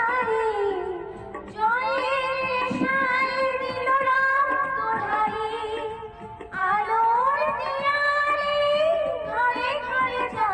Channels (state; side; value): identical; both; correlation 1.00